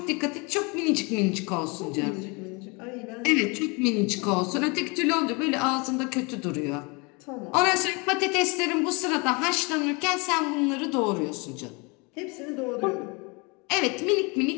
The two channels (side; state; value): right; quieter; 29.4 dB